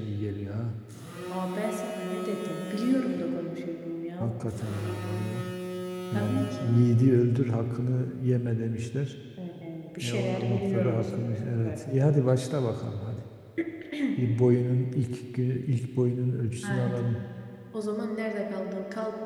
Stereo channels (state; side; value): identical; both; correlation 1.00